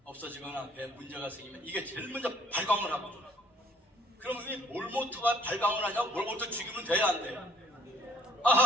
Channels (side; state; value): both; normal; correlation 0.60